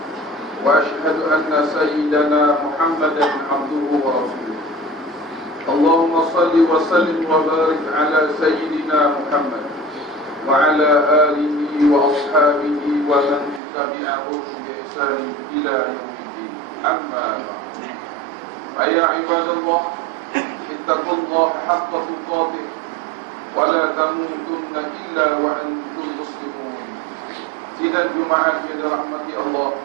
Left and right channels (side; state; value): left; drops out; at 13.6 s